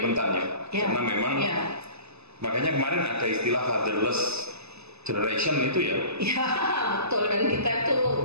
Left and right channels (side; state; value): left; late; 0.79 ms